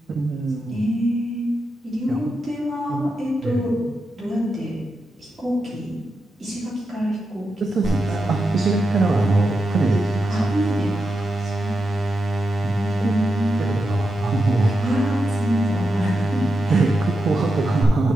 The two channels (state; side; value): normal; both; correlation 0.88